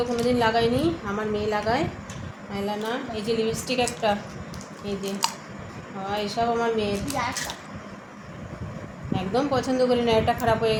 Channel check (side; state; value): both; identical; correlation 1.00